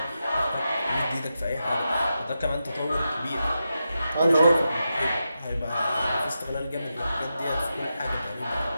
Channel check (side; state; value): both; inverted; correlation -0.88